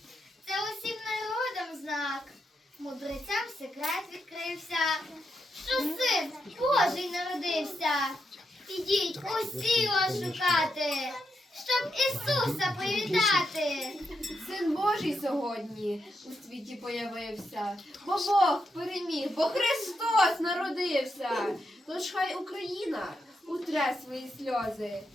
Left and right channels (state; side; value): normal; both; correlation 0.83